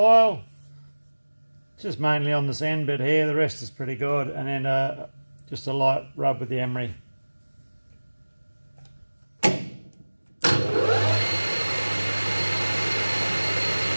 Just mainly on this end bit here, the rest is pretty good, and then just a light rub with the emery.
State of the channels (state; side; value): inverted; both; correlation -1.00